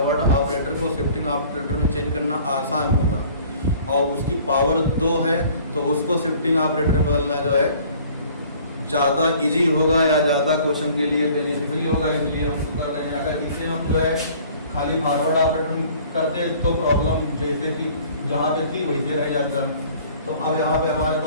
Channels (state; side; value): inverted; both; correlation -0.52